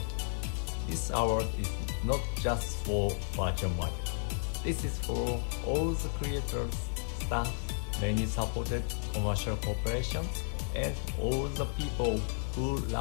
This award is not just for virtual market. This is for all the creators, staff, many supported commercial corporations, and all the people who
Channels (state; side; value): silent; right; digital silence